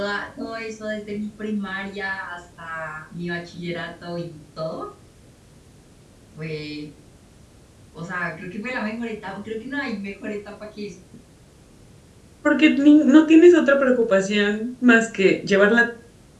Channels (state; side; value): identical; both; correlation 1.00